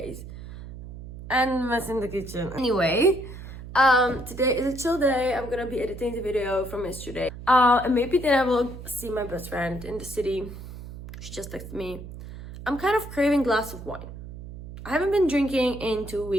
And mess in the kitchen. Anyway, today is a chill day. I'm gonna be editing the video from yesterday. And maybe then I will see my best friend in the city. She just texted me. I'm kind of craving a glass of wine. I haven't been drinking in 2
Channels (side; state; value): right; noise; hum, 12 dB below the sound